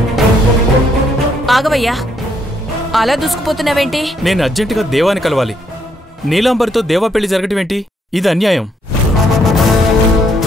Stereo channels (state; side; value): normal; both; correlation 0.72